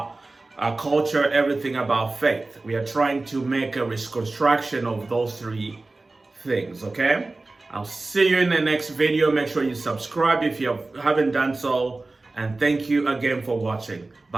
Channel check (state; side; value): quieter; left; 3.2 dB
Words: culture, everything about faith. We are trying to make a reconstruction of those three things, okay? I'll see you in the next video. Make sure you subscribe if you haven't done so. And thank you again for watching.